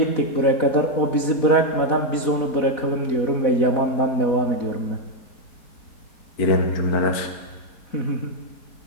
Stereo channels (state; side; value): late; right; 4.1 ms